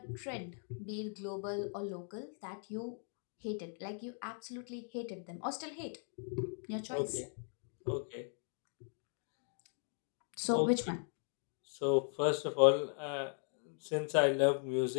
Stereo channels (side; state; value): right; silent; 52 dB below the other